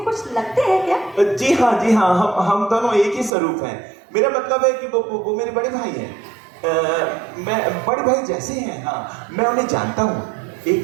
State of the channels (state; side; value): drops out; left; at 3.3 s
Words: कुछ लगते हैं क्या? जी हाँ, हम दोनों एक ही स्वरूप हैं। मेरा मतलब है कि वो मेरे बड़े भाई हैं। मैं बड़े भाई जैसे हैं। हाँ, मैं उन्हें जानता हूँ।